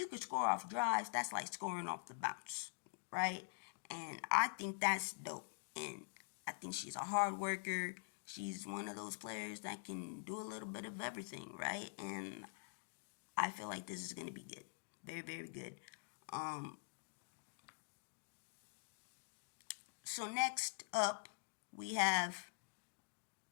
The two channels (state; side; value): silent; right; digital silence